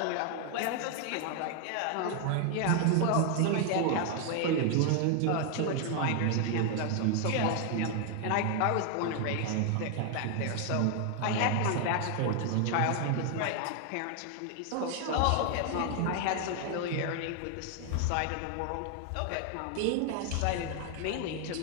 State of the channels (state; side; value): different; both; correlation 0.00